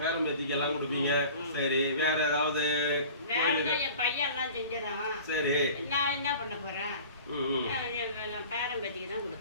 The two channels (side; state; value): both; inverted; correlation -0.42